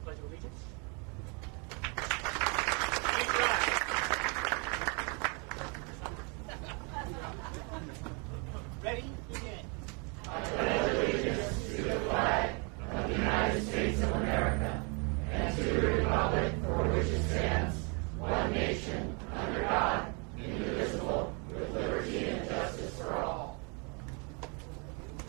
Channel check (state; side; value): quieter; left; 34.0 dB